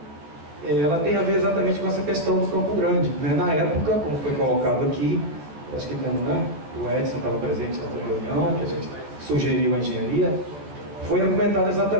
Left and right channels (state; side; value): late; left; 14 ms